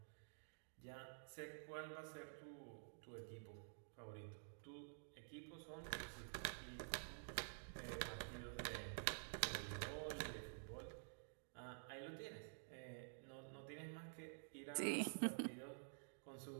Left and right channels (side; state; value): left; silent; digital silence